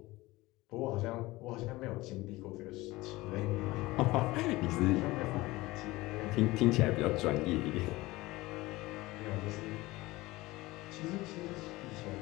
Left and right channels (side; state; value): right; quieter; 20.0 dB